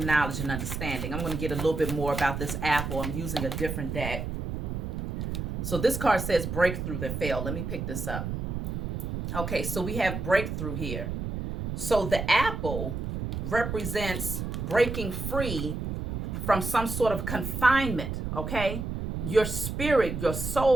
knowledge, and understanding. I'm going to get a little bit more about this apple. I'm using a different deck. So this card says breakthrough that failed. Let me pick this up. Okay, so we have breakthrough here. So the apple represents breaking free from some sort of confinement, okay? Your spirit, your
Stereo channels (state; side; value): noise; right; rumble, 4 dB below the sound